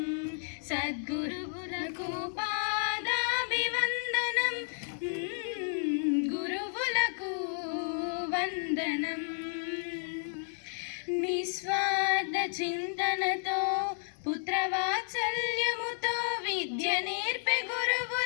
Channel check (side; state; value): right; silent; digital silence